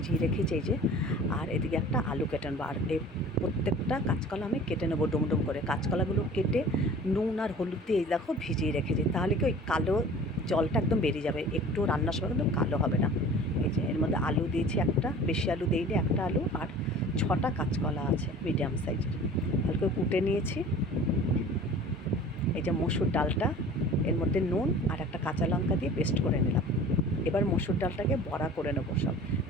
রেখেছি এই যে। আর এদিকে একটা আলু কেটে নেবো। আর এই প্রত্যেকটা কাঁচকলা আমি কেটে নেবো ডুমডুম করে। কাঁচকলাগুলো কেটে নুন আর হলুদ দিয়ে এই দেখো ভিজিয়ে রেখেছি, তাহলে কি ওই কালো জলটা একদম বেরিয়ে যাবে, একটু রান্নার সময় কিন্তু কালো হবে না। এই যে এর মধ্যে আলু দিয়েছি একটা, বেশি আলু দিইনি, একটা আলু আর 6টা কাঁচকলা আছে মিডিয়াম সাইজের, হালকা কুটে নিয়েছি। এই যে মসুর ডালটা, এর মধ্যে নুন আর একটা কাঁচা লঙ্কা দিয়ে পেস্ট করে নিলাম। এবার মসুর ডালটাকে বড়া করে নেবো সব।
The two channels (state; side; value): normal; both; correlation 0.44